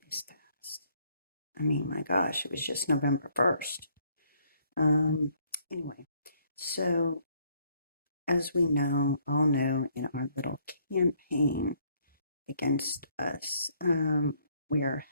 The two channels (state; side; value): inverted; both; correlation -0.67